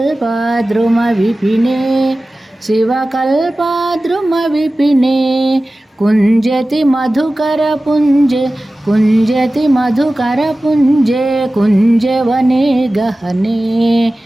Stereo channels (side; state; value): both; normal; correlation 0.96